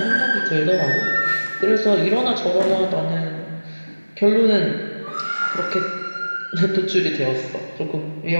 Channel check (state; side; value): inverted; both; correlation -1.00